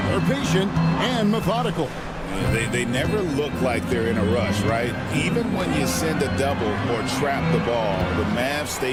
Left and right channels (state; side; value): identical; both; correlation 1.00